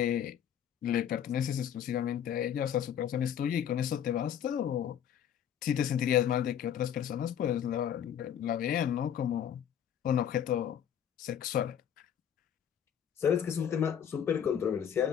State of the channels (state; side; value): quieter; right; 9.2 dB